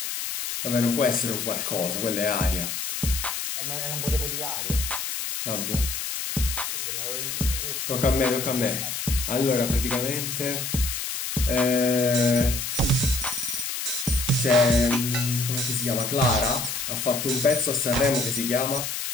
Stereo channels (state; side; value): noise; left; hiss, 4 dB below the sound